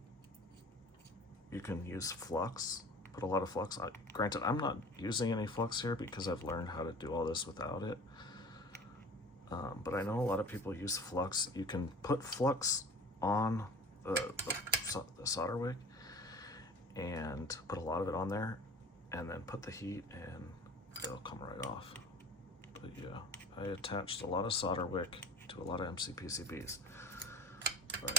you can use flux, put a lot of flux. Granted, I'm not using any flux here because I've learned how to do all this without it. But I know a lot of people use flux. You can put flux on the solder wick and put a lot of it on there and then put the heat and it'll come right off. But yeah, I attached a lot of solder wick to a lot of MCPCBs,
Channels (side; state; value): both; normal; correlation 0.42